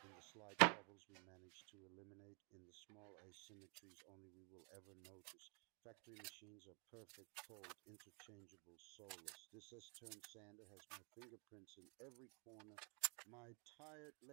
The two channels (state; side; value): quieter; left; 36.0 dB